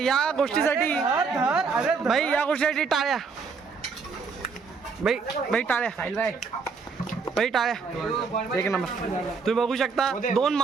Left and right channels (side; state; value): left; quieter; 5.1 dB